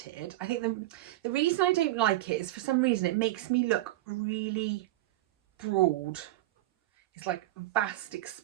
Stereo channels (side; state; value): left; quieter; 16.1 dB